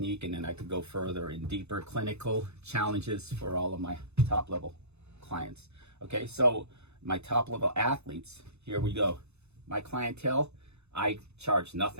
and then I could go further in deeper clinical challenges for all of my top level clients. Okay, so my top level athletes, here we go. My clientele, I charge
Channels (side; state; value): left; late; 0.81 ms